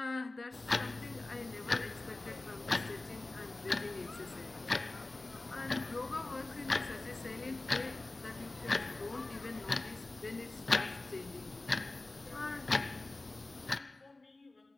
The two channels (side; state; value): right; quieter; 3.0 dB